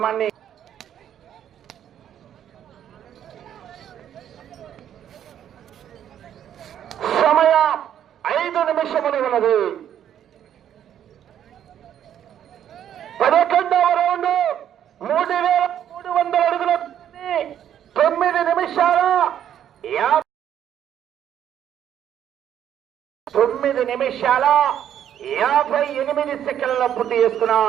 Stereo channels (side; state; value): left; quieter; 10.1 dB